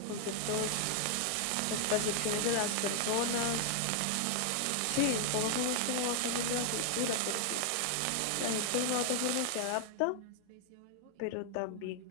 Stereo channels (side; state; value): both; different; correlation 0.00